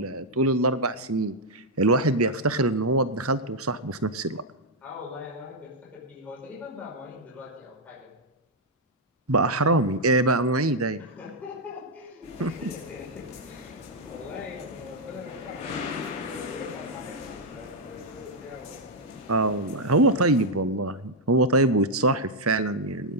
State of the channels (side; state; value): both; normal; correlation -0.02